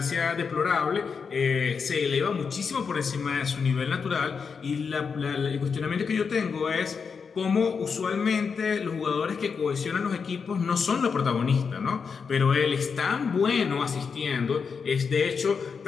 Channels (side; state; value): right; quieter; 5.7 dB